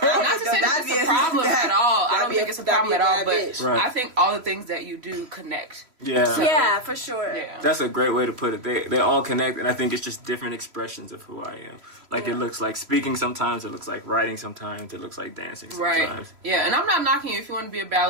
say that it's a problem at all. I don't think it's a problem at all. But I think all the things that you do connect. Yeah. Yeah, for sure. Yeah. That's a great way to put it. They all connect, and I think it's just different expressions of who I am. It looks like speaking sometimes, it looks like writing sometimes, it looks like dancing sometimes. Right. Yeah, and I'm not knocking you if you want to be a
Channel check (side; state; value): left; late; 3.0 ms